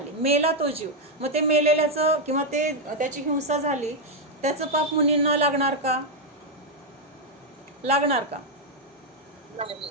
मेला तो जीव. मग ते मेलेल्याचं किंवा त्याची हिंसा झाली, त्याचं पाप मुनींना लागणार का? लागणार का?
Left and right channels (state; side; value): normal; both; correlation 0.01